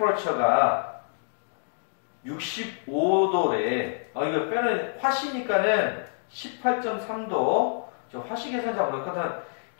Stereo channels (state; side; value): silent; right; 60 dB below the other